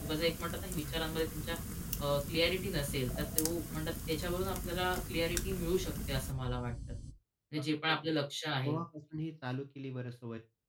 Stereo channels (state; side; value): identical; both; correlation 1.00